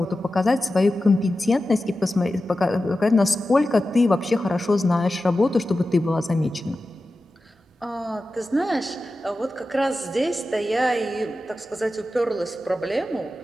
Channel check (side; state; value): both; normal; correlation 0.93